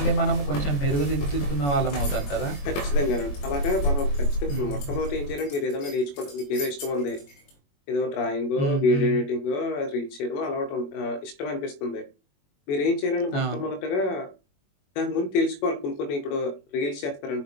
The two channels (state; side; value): late; right; 21 ms